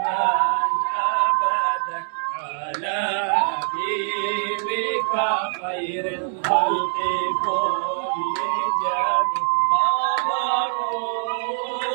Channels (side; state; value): left; silent; digital silence